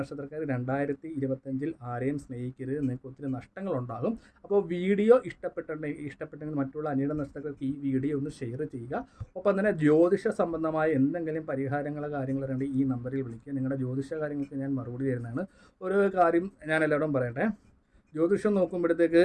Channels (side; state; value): both; identical; correlation 1.00